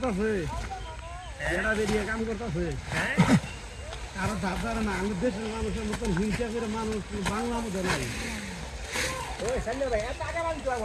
এরা বেরিয়ে কাম করতেছে। আরো ধার না, আমাদের দেশের মানুষের মতন হিংসা করে মানুষ বাংলা মধ্যে নাই। ওই সাইলে ভাই এত আগে বানতে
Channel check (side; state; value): both; identical; correlation 1.00